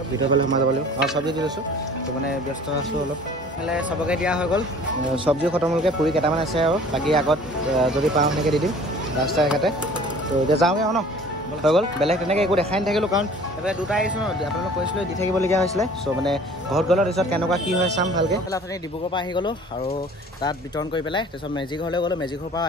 ভিতৰৰ ফালে সোমাই যাব লাগিব অঁ চব্জি দি লৈছোঁ তো মানে ব্যস্ত আছোঁ অলপ এইফালে চবকে দিয়া হৈ গ'ল চব্জি খতম হ'লগৈ পুৰি কেইটামান আছে আৰু বাকী আগত যদি পাওঁ সেনেকৈ দি দিম ৰাস্তা এঘাটে তো এতিয়া যাওঁগৈ আৰু ন হৈ গ'ল বেলেগ তেনেকৈ একো দেখাই নাথাকিলোঁ কাৰণ এইফালে দুটা আহিছোঁ ন আপোনালোক কৈছিলোঁ দি থাকিবলগীয়া হৈছিলে চ' মানে ঘৰত গ'লৰ পিছত কেনেকুৱা কি হয় চাম ভালকৈ এইফালে আপুনি ডিব্ৰুগড়ৰ পৰা আহি গ'লোঁ আৰু তাত বিতৰণ কৰি পেলাই তাৰপিছত মেজি ঘৰলৈ গ'লোঁ মেজি ঘৰৰ পৰা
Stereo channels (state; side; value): normal; both; correlation 0.48